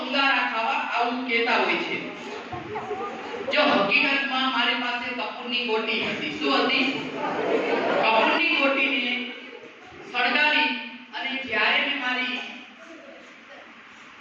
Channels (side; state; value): both; identical; correlation 1.00